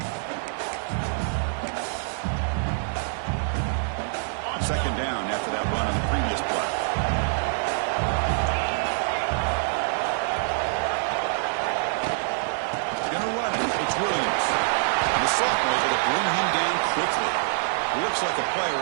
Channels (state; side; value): silent; left; digital silence